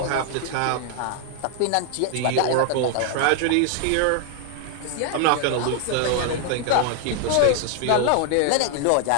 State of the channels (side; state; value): both; different; correlation 0.00